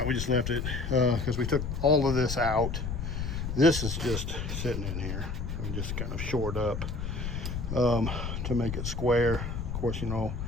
we just left it because we took all of this out. This is just sitting in here and just kind of shored up to make it square. Of course,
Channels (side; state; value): left; noise; rumble, 4 dB below the sound